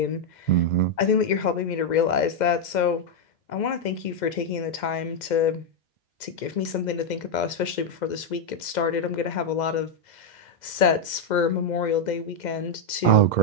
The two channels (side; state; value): right; late; 2.1 ms